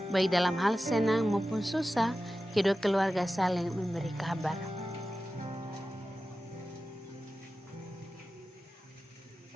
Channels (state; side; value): normal; both; correlation 0.94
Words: baik dalam hal senang maupun susah, kedua keluarga saling memberi kabar.